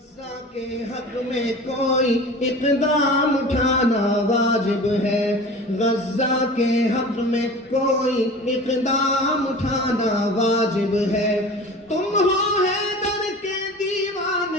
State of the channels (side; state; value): both; normal; correlation 0.38